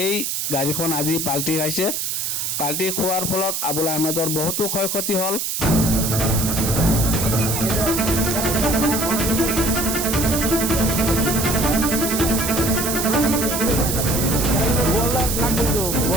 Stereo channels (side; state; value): right; noise; hiss, 1 dB below the sound